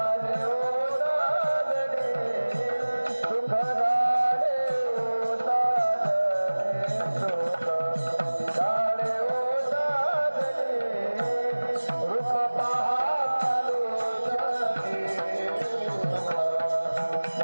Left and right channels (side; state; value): both; inverted; correlation -1.00